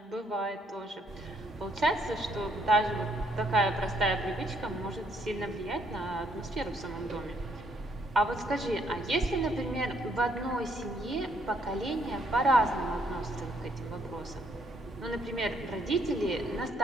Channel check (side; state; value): both; normal; correlation 0.70